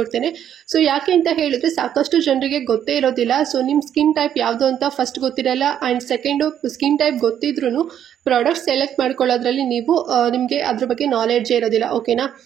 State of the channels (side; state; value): left; quieter; 9.8 dB